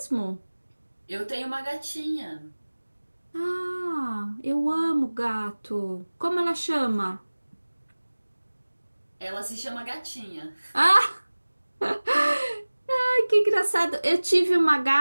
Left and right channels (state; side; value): inverted; both; correlation -1.00